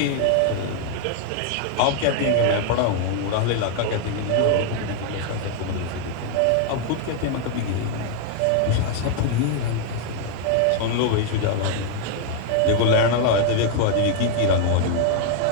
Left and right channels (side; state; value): both; different; correlation 0.00